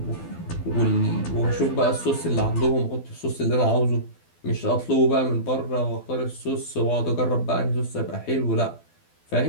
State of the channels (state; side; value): late; right; 12 ms